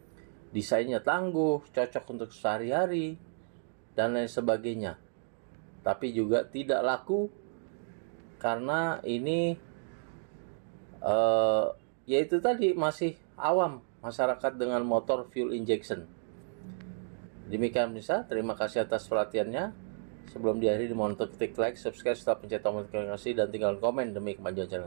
Desainnya tangguh, cocok untuk sehari-hari dan lain sebagainya. Tapi juga tidak laku karena ini yaitu tadi masih awam masyarakat dengan motor fuel injection. Demikian pemirsa, terima kasih atas perhatiannya. Sebelum diakhiri dimohon untuk klik like, subscribe, serta pencet tombol notifikasi dan tinggalkan komen demi kemajuan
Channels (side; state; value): left; silent; digital silence